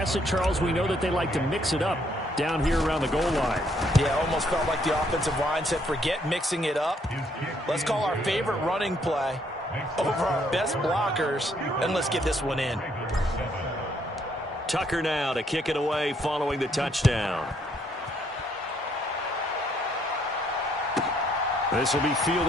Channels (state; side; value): normal; both; correlation 0.69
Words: it, Charles. We know that they like to mix it up down here around the goal line. Yeah, almost felt like the offensive line said, forget mixing it up. Let's call our favorite running play over our best blockers, and let's get this one in. Tucker now to kick it away following the touchdown. This will be